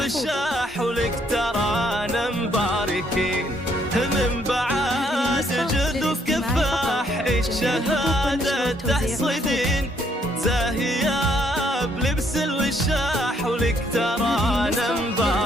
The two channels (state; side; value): normal; both; correlation 0.69